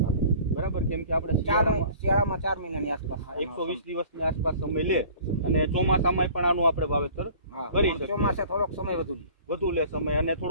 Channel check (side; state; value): both; inverted; correlation -0.48